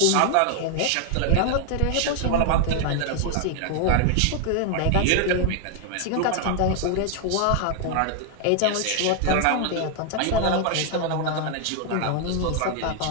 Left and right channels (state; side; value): different; both; correlation 0.00